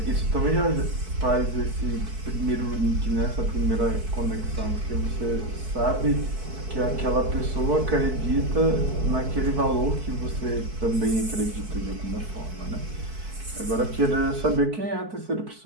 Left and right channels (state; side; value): late; left; 4.6 ms